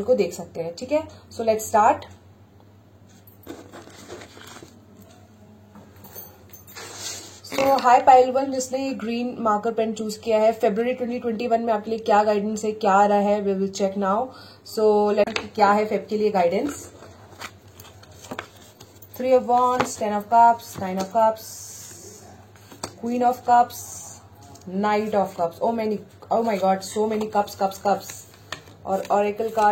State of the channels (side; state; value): both; identical; correlation 1.00